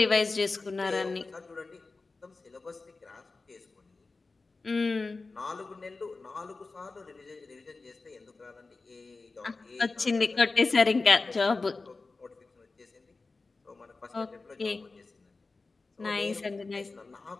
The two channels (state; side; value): quieter; right; 3.8 dB